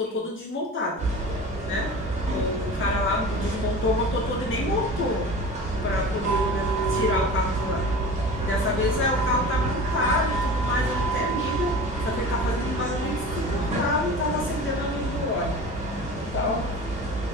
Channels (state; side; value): normal; both; correlation 0.36